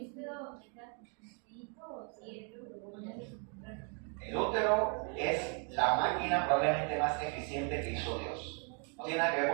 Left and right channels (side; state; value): left; quieter; 39.6 dB